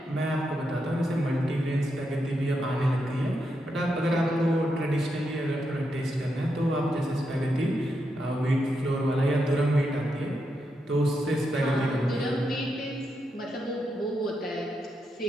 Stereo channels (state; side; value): normal; both; correlation 0.83